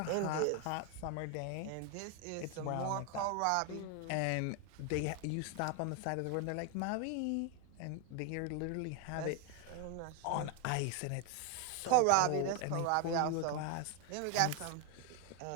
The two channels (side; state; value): both; different; correlation 0.01